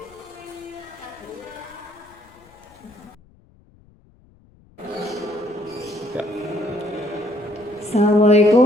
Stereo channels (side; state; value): left; noise; rumble, 28 dB below the sound